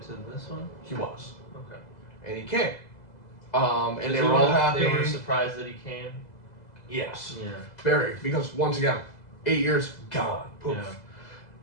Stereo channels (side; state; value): right; late; 2.0 ms